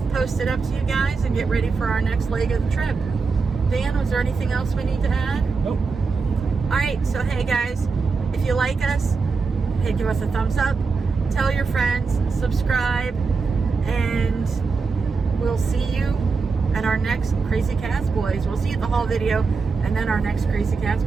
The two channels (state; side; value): quieter; left; 4.7 dB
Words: posted up to you guys and get ready for our next leg of the trip. Dan, was there anything else we need to add? Nope. Alright, so hey guys, if you like us, hey, give us a thumbs up, tell your friends, subscribe, and we'll see you at our next Crazy Cazboys. We'll see you at the haul video, and then our next Crazy